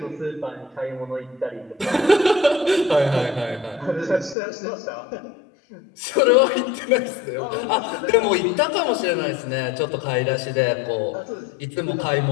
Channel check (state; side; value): drops out; right; at 4.4 s